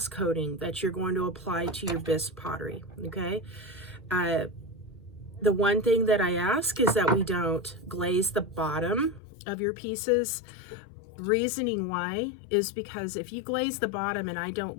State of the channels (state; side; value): drops out; right; at 9.2 s